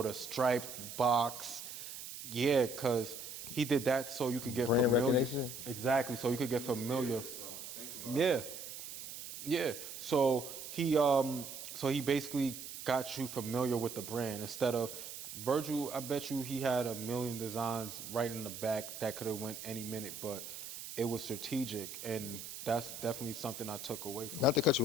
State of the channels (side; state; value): right; noise; hiss, 10 dB below the sound